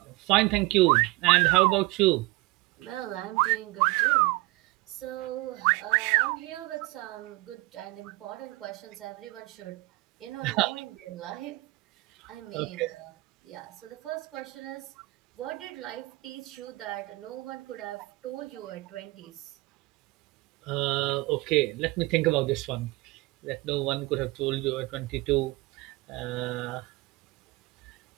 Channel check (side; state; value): left; quieter; 22.2 dB